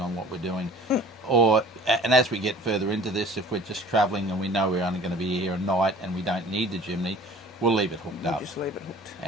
what we're doing. And as we get further into this, if we're just travelling and we know we're only going to be here at night and we don't need the chimney, we'll leave it hooked up. Just leave it hooked.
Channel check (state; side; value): normal; both; correlation 0.47